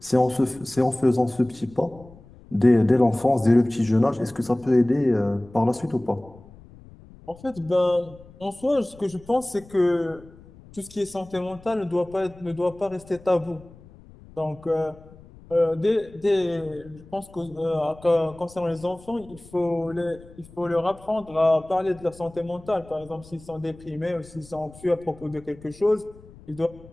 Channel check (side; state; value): left; noise; rumble, 22 dB below the sound